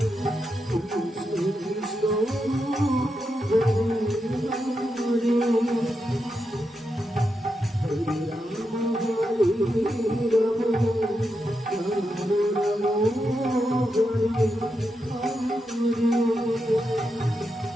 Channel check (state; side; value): normal; both; correlation 0.85